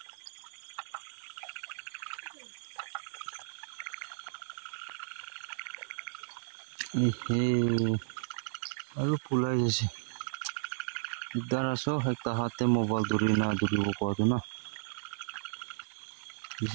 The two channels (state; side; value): silent; left; digital silence